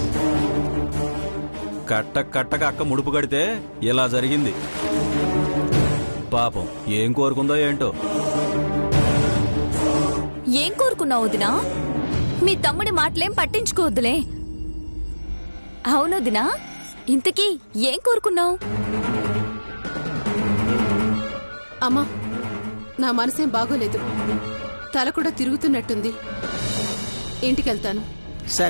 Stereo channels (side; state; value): both; inverted; correlation -1.00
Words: కట్టక అక్క ముడుపు కడితే ఇలా జరిగింది. పాపం ఏం కోరుకుందో ఏంటో. ఏం కోరుకున్నావు వదినా? మీ తమ్ముడి మాటలేం పట్టించుకోవద్దులే. అవును వదినా, ఇంతకీ ఏం కోరుకున్నావు? అమ్మా, నా మనసేం బాగోలేదు. తల కూడా తిరుగుతున్నట్టుంది. ఇంటికెళ్తాను.